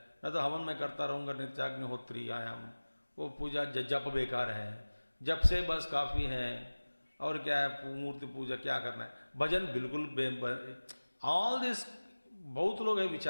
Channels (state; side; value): inverted; both; correlation -1.00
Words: न तो हवन मैं करता रहूँगा नित्याग्निहोत्री आयाम, वो पूजा जप बेकार है, जप से बस काफ़ी है, और क्या है मूर्ति पूजा क्या करना है, भजन बिल्कुल ऑल दिस, बहुत लोग है